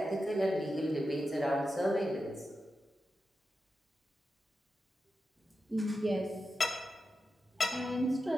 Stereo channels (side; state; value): both; normal; correlation 0.90